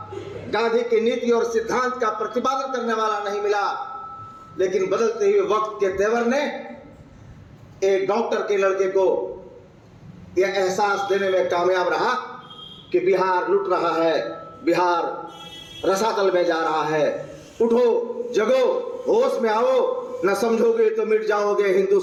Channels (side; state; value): both; identical; correlation 1.00